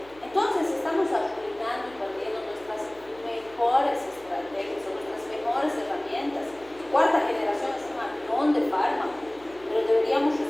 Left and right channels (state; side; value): noise; left; hum, 25 dB below the sound